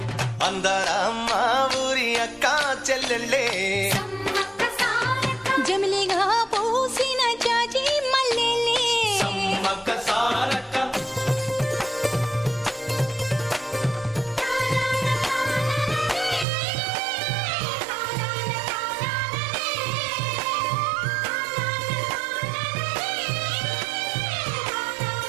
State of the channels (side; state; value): left; drops out; at 16.4 s